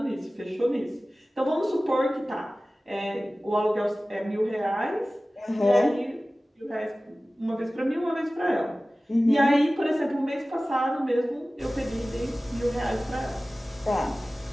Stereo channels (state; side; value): normal; both; correlation 0.97